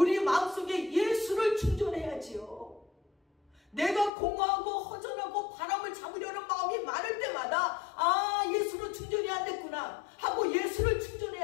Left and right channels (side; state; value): right; drops out; at 4.1 s